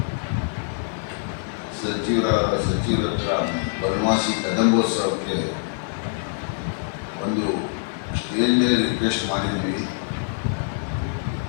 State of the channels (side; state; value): right; silent; 57 dB below the other